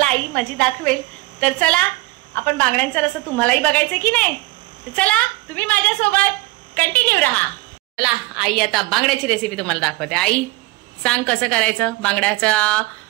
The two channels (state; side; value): quieter; left; 20.8 dB